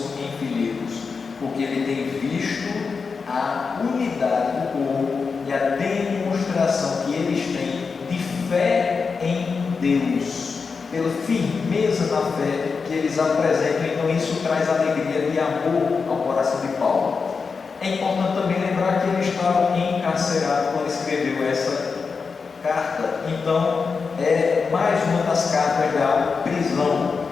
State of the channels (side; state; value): right; quieter; 5.1 dB